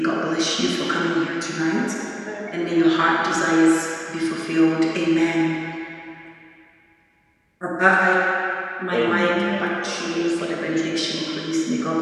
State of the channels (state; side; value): identical; both; correlation 1.00